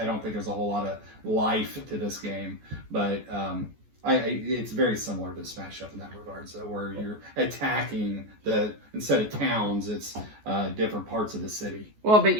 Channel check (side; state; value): left; late; 14 ms